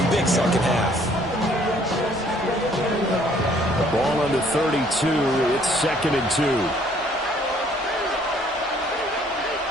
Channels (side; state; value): both; normal; correlation 0.61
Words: big second half. Ball under 32. It's 2nd and 2.